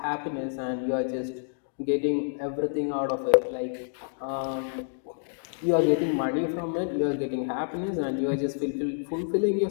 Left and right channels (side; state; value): right; silent; digital silence